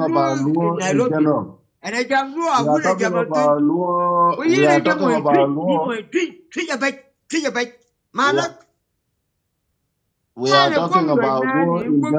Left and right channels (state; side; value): identical; both; correlation 1.00